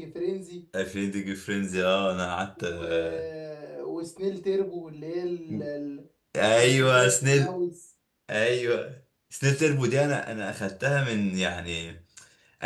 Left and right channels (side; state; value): both; identical; correlation 1.00